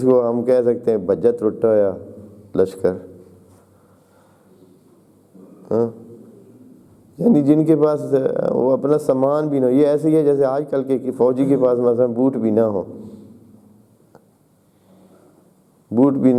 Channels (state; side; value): identical; both; correlation 1.00